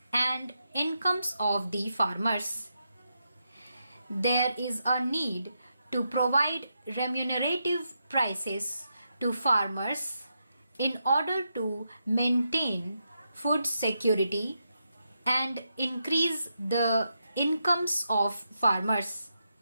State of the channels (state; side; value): inverted; both; correlation -0.84